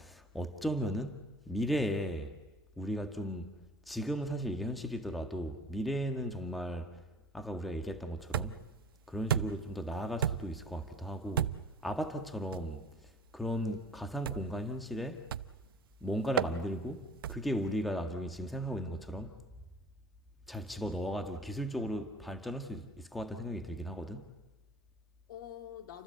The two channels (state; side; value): normal; both; correlation 0.45